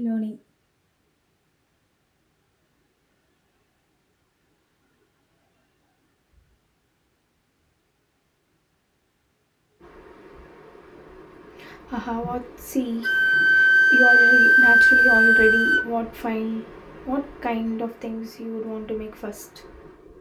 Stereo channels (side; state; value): both; identical; correlation 1.00